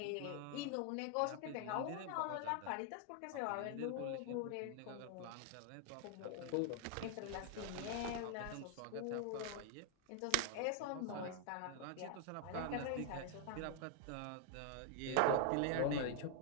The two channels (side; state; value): both; different; correlation 0.00